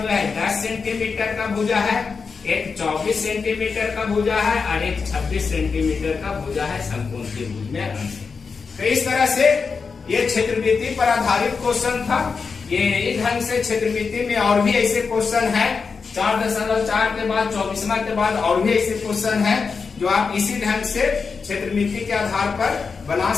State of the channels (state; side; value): quieter; right; 5.1 dB